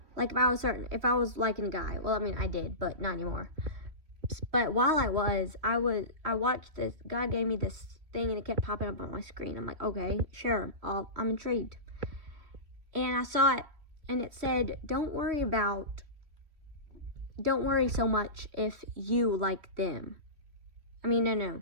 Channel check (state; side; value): late; left; 3.1 ms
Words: Like, if I was liking a guy, well, I mean, I did, but not anymore. But while I watched this, God gave me this thing, and it kept popping up on my screen. I'm like, okay, sure, I'm intrigued. And I saw it, and it said, don't worry so much if you like them. I mean, no.